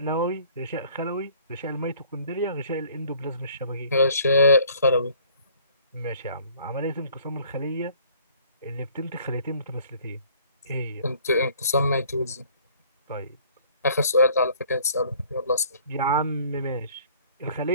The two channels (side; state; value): both; inverted; correlation -0.56